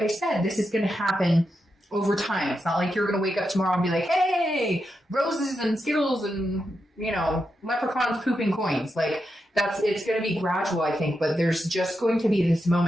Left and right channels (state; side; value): normal; both; correlation 0.86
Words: I said, this is going to happen over time. It's not like you're going to wake up tomorrow and be like, hey, roses and Skittles and, you know, leprechauns pooping coins. Like it's going to be gradual, I think, but there's just going to be this